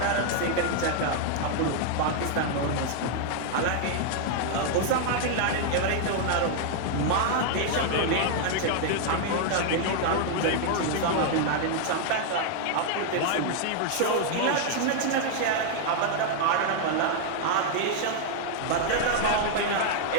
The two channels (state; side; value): different; both; correlation 0.00